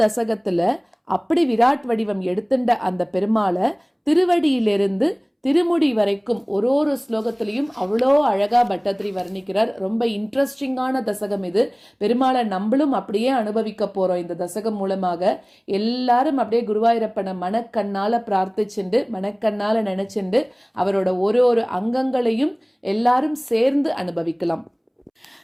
தசகத்துல அப்படி விராட் வடிவம் எடுத்துட்ட அந்த பெருமாளை திருவடியிலிருந்து திருமுடி வரைக்கும் ஒரு ஸ்லோகத்திலையும் அவ்வளோ அழகா பட்டத்திரி வர்ணிக்கிறார். ரொம்ப இன்ட்ரெஸ்டிங்கான தசகம் இது. பெருமாளை நம்மளும் அப்படியே அனுபவிக்க போறோம். இந்த தசகம் மூலமாக எல்லாரும் அப்படியே குருவாயூரப்பனை மனக்கண்ணால பிரார்த்திச்சுண்டு மனக்கண்ணால நினைச்சுண்டு அவரோட ஒரு அங்கங்களையும் எல்லாரும் சேர்ந்து அனுபவிக்கலாம்.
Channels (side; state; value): both; identical; correlation 1.00